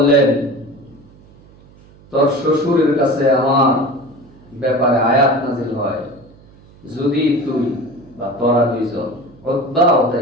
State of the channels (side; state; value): right; noise; hum, 25 dB below the sound